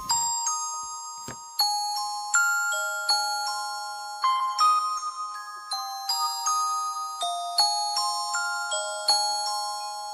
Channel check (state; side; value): identical; both; correlation 1.00